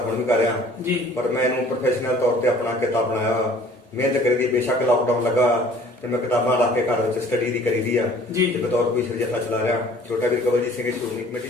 ਹੁਣ ਵੀ ਕਰ ਰਿਹਾ। ਜੀ। ਪਰ ਮੈਂ ਇਹਨੂੰ ਪ੍ਰੋਫੈਸ਼ਨਲ ਤੌਰ ਤੇ ਆਪਣਾ ਕਿੱਤਾ ਬਣਾਇਆ। ਮਿਹਨਤ ਕਰੀਦੀ, ਬੇਸ਼ੱਕ ਲਾਕਡਾਊਨ ਲੱਗਾ ਤੇ ਮੈਂ ਕਿਤਾਬਾਂ ਲਾ ਕੇ ਘਰ ਵਿੱਚ ਸਟੱਡੀ ਦੀ ਕਰੀਦੀ ਆ। ਜੀ। ਤੇ ਬਤੌਰ ਕੋਈ ਜਥਾ ਚਲਾ ਰਿਹਾ। ਛੋਟਾ ਵੀਰ ਕਵਲਜੀਤ ਸਿੰਘ ਸ਼੍ਰੋਮਣੀ ਕਮੇਟੀ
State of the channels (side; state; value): both; normal; correlation 0.52